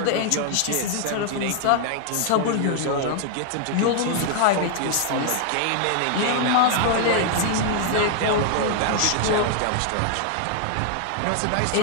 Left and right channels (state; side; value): different; both; correlation 0.00